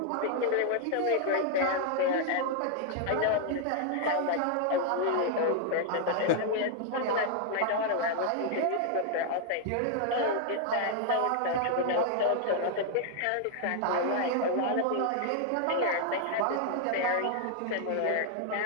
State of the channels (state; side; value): different; both; correlation 0.00